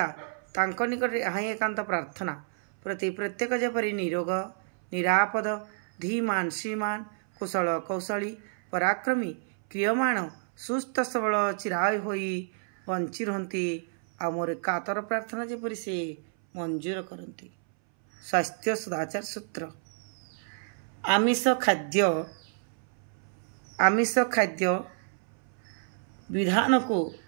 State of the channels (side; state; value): left; silent; 58 dB below the other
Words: तांको निकट यहाँ एकांत प्रार्थना प्रति प्रत्येक जेपरी निरोग निरापद धीमान श्रीमान कुशल कौशली पराक्रमी क्रियमाण सुस्थ सबल चिराय होई बंची रहती आ मोर कातर प्रार्थना जेपरी से मंजूर करती। स्वास्थ्य सदाचार सूत्र आमिष खाद्य विधान को